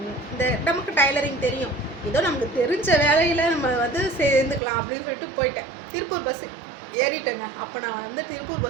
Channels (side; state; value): left; drops out; at 4.6 s